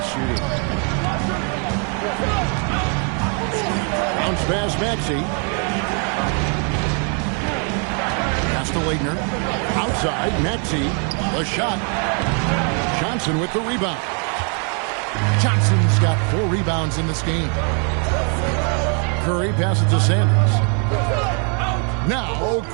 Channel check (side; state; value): left; quieter; 39.8 dB